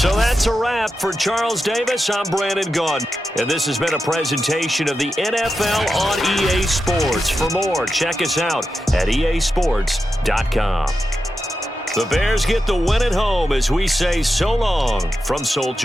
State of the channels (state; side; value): normal; both; correlation 0.89